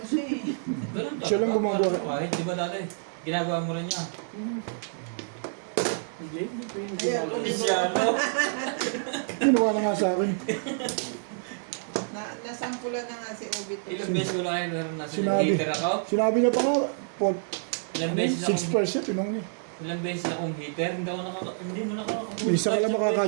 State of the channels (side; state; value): left; silent; digital silence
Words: siya eh. Ganun Siya lang gumagawa. Kahit, di ba dati? Ginagawa mo rin niya. Jay. Hindi ko yung Ayan, ginagawa. Polisyano. Ginawa na nga sa akin. Nasampulan na nga si Obi to. Ilang beses ko lang kayo naroon na Sinabi. hater ako. Sinabi niya pa nga, Paul, Ilang beses na akong 6%, tinong niya. ilang beses na akong hater. Hindi mo nakakabuhay. May isa ka lang